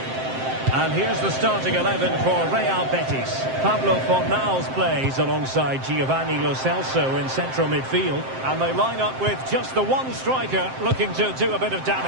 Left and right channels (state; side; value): late; left; 7.6 ms